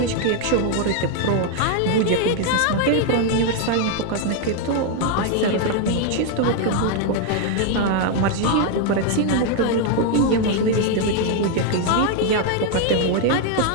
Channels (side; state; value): both; different; correlation 0.00